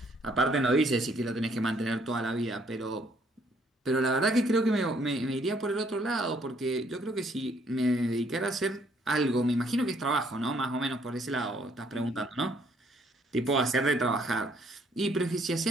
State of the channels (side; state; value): both; normal; correlation 0.66